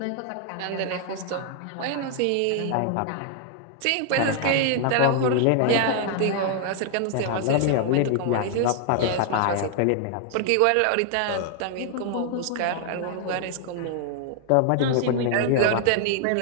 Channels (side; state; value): both; different; correlation 0.00